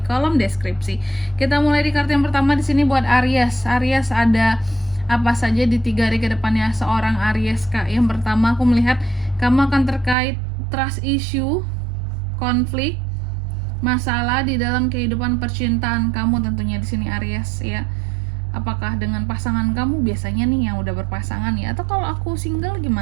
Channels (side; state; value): left; drops out; at 10.2 s